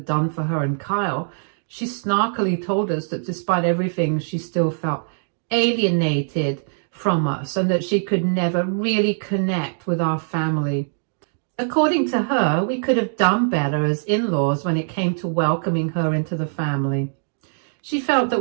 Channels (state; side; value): silent; left; digital silence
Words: done for her and Kyle, she snarkily told us that despite everything, she still felt alienated from us and that she could never really connect with our family. According to her, we could have done better as in-laws when it came to welcoming her into the family. She felt that